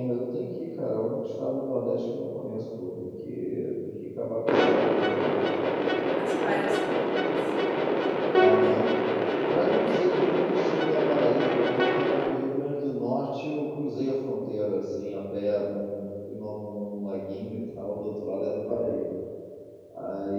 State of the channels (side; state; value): both; identical; correlation 1.00